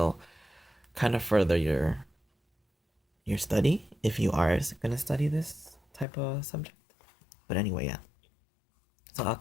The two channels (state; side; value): drops out; right; at 6.1 s